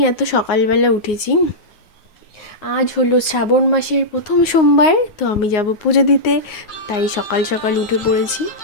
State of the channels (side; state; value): right; late; 9.5 ms